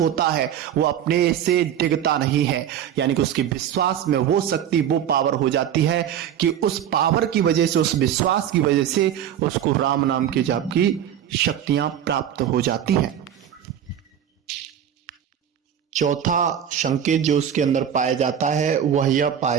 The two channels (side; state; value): left; quieter; 9.7 dB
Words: है, वो अपने से डिगता नहीं है। यानी कि उसके विश्वास में वो शक्ति, वो पावर हो जाती है कि उस पावर की वजह से, उस विश्वास की वजह से उसको राम नाम के जाप की शक्तियां प्राप्त हो जाती हैं। चौथा संकेत जो उसके अंदर पाया जाता है, वह यह पाया